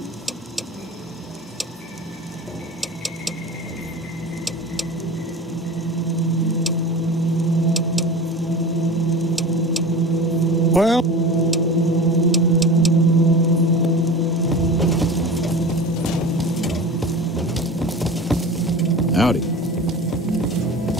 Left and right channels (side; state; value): both; normal; correlation 0.34